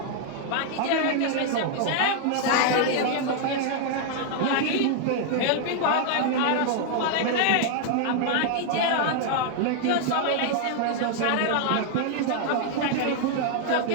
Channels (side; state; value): both; different; correlation 0.00